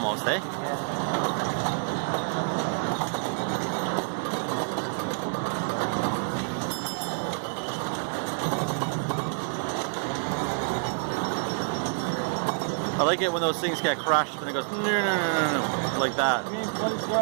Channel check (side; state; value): left; silent; digital silence